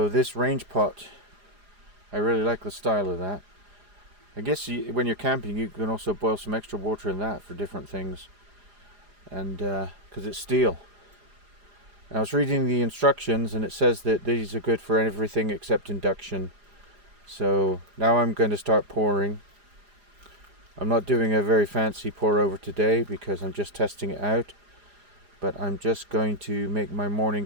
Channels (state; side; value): late; left; 4.9 ms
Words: this range pot, I really like the style of that. I guess when you're camping you can also boil some extra water in that for different things, and because it's steel. I was reading the instructions and it says that these are good for everything except induction. So now I'm going to start pouring. I'm not doing a very fancy pour over today because I'm just testing it out, but I'm just going to make my morning